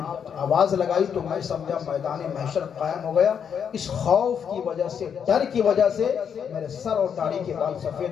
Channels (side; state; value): right; quieter; 7.6 dB